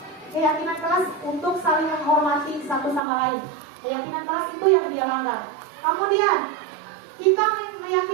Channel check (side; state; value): left; drops out; at 3.0 s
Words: kelas untuk saling menghormati satu sama lain. Keyakinan kelas itu yang dia langgar. Kemudian kita